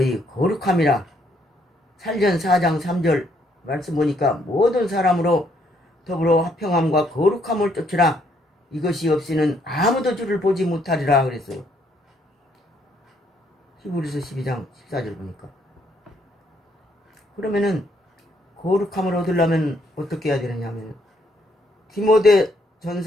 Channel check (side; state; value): both; normal; correlation 0.70